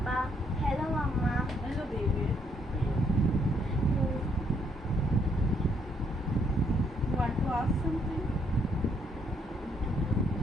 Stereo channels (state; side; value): normal; both; correlation 0.71